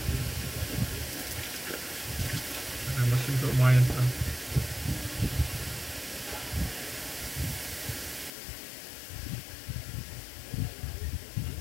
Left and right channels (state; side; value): drops out; right; at 8.3 s